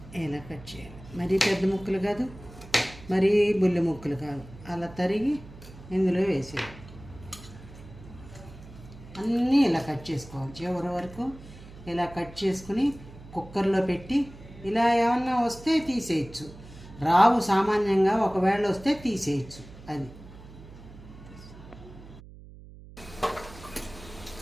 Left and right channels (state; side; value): noise; right; hum, 18 dB below the sound